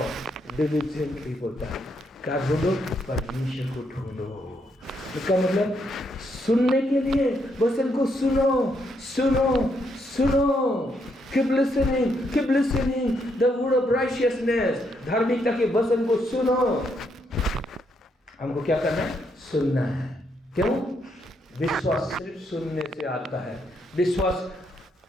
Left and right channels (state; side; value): normal; both; correlation 0.76